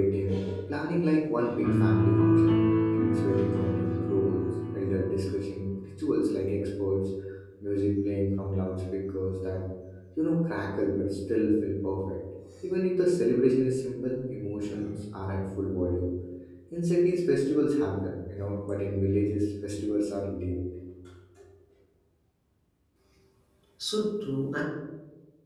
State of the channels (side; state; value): both; identical; correlation 1.00